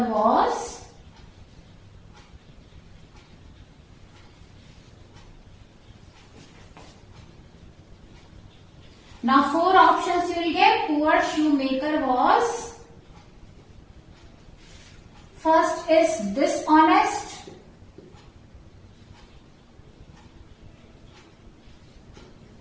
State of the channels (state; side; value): identical; both; correlation 1.00